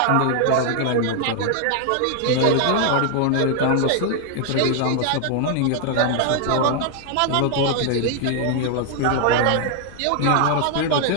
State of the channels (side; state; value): both; different; correlation 0.00